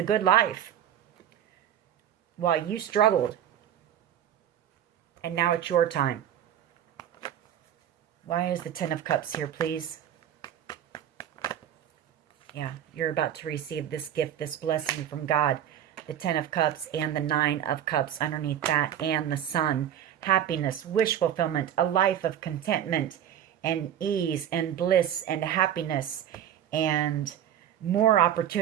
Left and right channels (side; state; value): left; quieter; 10.3 dB